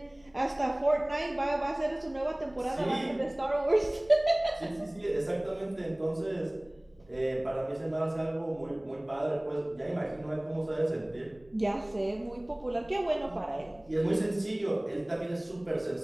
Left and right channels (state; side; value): noise; left; rumble, 30 dB below the sound